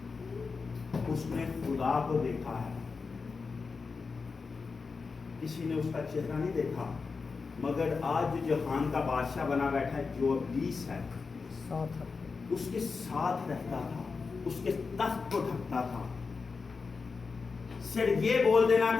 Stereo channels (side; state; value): right; quieter; 4.7 dB